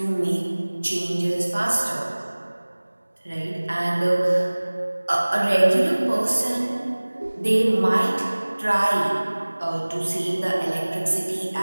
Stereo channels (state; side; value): inverted; both; correlation -1.00